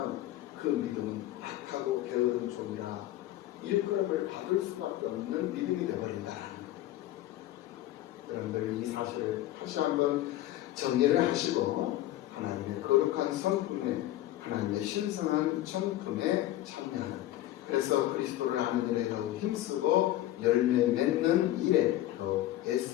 그 믿음은 악하고 게으른 종이라 일컬음을 받을 수밖에 없는 믿음이 되어버린다는 거예요. 여러분들 이 사실을 다시 한번 정리를 하시고 하나님의 거룩한 성품에 하나님의 신성한 성품에 참여하는 그래서 그리스도를 아는 일에 더욱 힘쓰고 열매 맺는 일에 더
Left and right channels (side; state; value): right; quieter; 14.5 dB